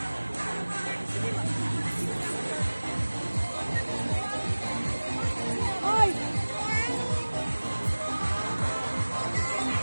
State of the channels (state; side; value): inverted; both; correlation -1.00